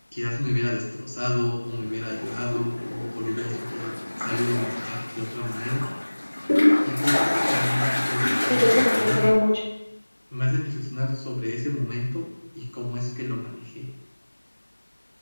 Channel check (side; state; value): both; inverted; correlation -1.00